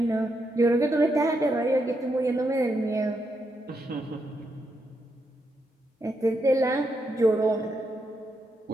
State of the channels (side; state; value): both; normal; correlation 0.81